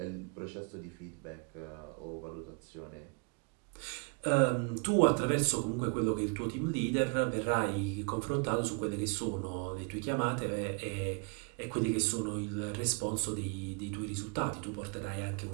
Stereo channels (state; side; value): quieter; left; 37.0 dB